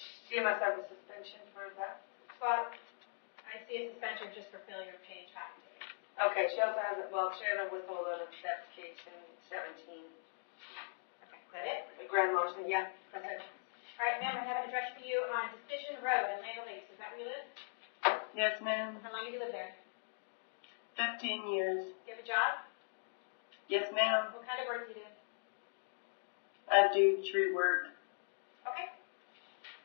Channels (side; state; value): right; silent; digital silence